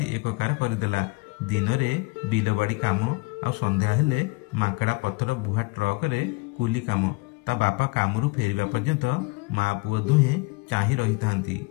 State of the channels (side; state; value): right; quieter; 25.9 dB